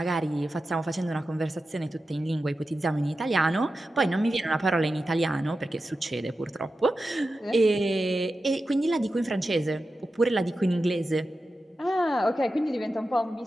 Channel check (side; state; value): both; normal; correlation 0.92